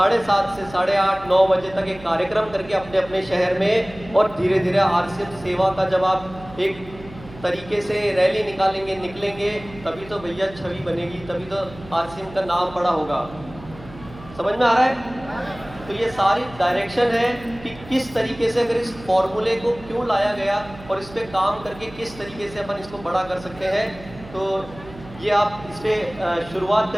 से 8:30 9 बजे तक एक कार्यक्रम करके अपने अपने शहर में, और धीरे धीरे आरसीएम सेवा का जब आप एक तरीके से रैली निकलेंगे, तभी तो भैया छवि बनेगी, तभी तो आरसीएम का नाम बड़ा होगा। समझ में आ रहा है? तो ये सारी डायरेक्शन है कि किस तरीके से अगर इस फॉर्मूले को क्यों लाया गया और इस पे काम करके किस तरीके से अपन इसको बड़ा कर सकते हैं। तो ये आप इस पे शुरुआत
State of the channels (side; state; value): right; noise; hum, 18 dB below the sound